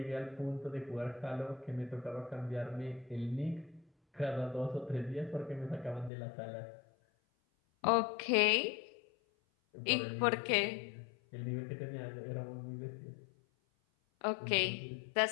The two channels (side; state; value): right; drops out; at 6.1 s